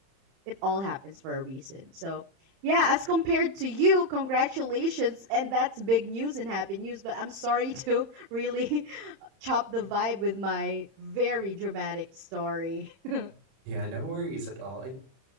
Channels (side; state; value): left; late; 31 ms